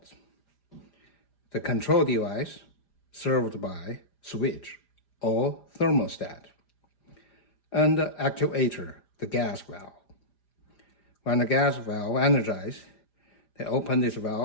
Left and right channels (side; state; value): right; late; 5.0 ms